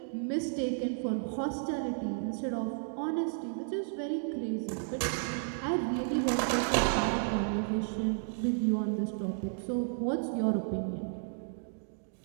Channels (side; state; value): left; silent; digital silence